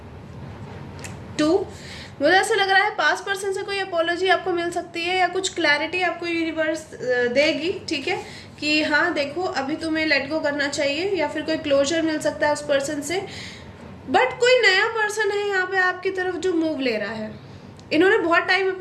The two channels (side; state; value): both; identical; correlation 1.00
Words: 2, मुझे ऐसा लग रहा है पास्ट पर्सन से कोई अपोलॉजी आपको मिल सकती है या कुछ क्लैरिटी आपको यूनिवर्स देगी, ठीक है, कि हाँ देखो अभी तुम्हें लेट गो करना चाहिए, या फिर कोई क्लोजर मिल सकता है उस पर्सन से। बट कोई नया पर्सन है यहाँ पे आपकी तरफ जो मूव ले रहा है। इन्होंने बहुत टाइम